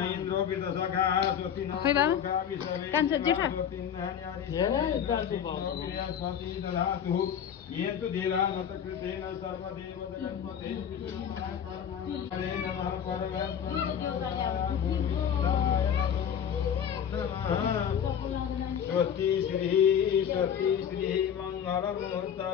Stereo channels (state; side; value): quieter; right; 8.5 dB